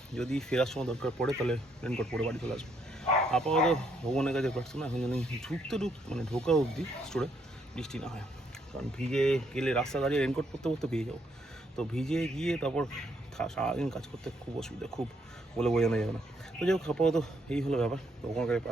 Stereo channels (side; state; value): both; normal; correlation 0.73